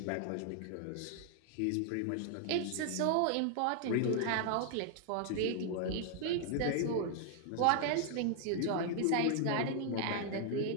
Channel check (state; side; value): different; both; correlation 0.00